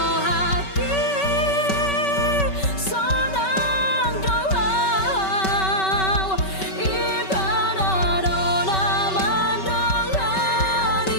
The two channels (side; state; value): right; late; 5.2 ms